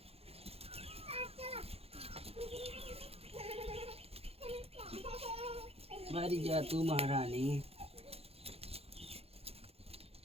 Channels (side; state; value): left; late; 0.29 ms